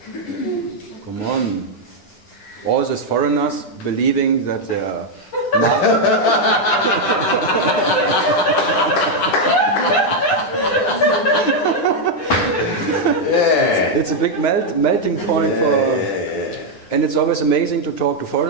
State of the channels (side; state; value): right; late; 9.8 ms